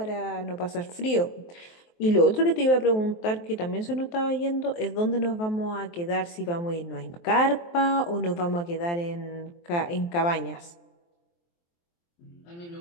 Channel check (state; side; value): late; right; 23 ms